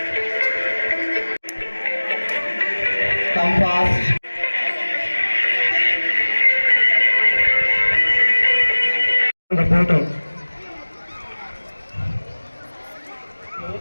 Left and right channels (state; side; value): inverted; both; correlation -1.00